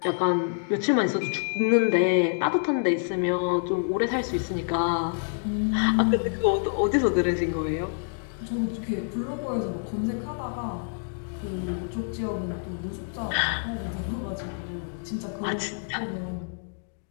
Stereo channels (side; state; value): right; silent; digital silence